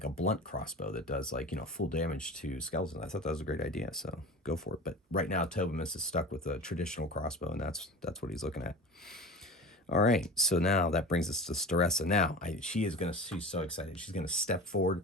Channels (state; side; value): normal; both; correlation 0.34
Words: a blunt crossbow that does like, you know, full damage to skeletons. I thought that was a great idea, so go for it. But right now, Tobimus is stuck with a traditional crossbow, and that's what he's looking at. All right, so now that brings us to Staressa. Now, she's so excited. She's going to step forward